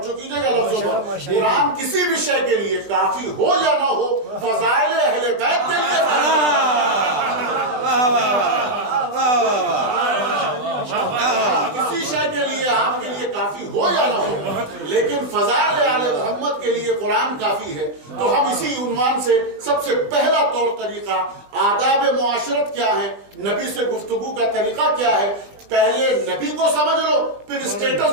کیجئے گا لفظوں پر، قرآن کسی بھی شے کے لیے کافی ہو یا نہ ہو، فضائل اہل بیت کے لیے کسی شے کے لیے آپ کے لیے کافی ہو یا نہ ہو، لیکن فضائل آل محمد کے لیے قرآن کافی ہے۔ تو ہم اسی عنوان سے سب سے پہلا طور طریقہ آداب معاشرت کیا ہے، نبی سے گفتگو کا طریقہ کیا ہے، پہلے نبی کو سمجھ لو، پھر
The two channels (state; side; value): late; left; 20 ms